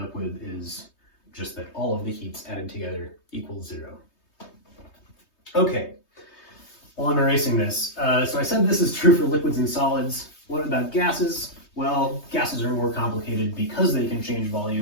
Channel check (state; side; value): late; right; 3.2 ms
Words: with is just that all of the heats added together equals 0. Okay, while I'm erasing this, so I said this is true for liquids and solids. What about gases? Well, gases are more complicated because they can change